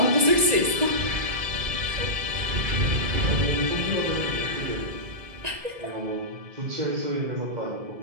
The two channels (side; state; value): left; late; 1.9 ms